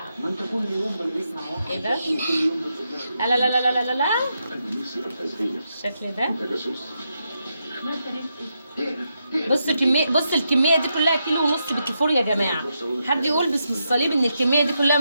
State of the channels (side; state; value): both; inverted; correlation -0.84